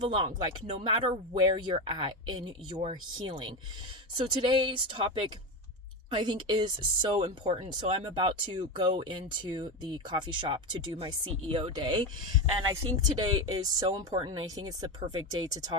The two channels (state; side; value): normal; both; correlation 0.17